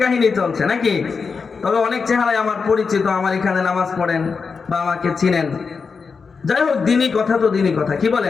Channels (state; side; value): quieter; right; 5.2 dB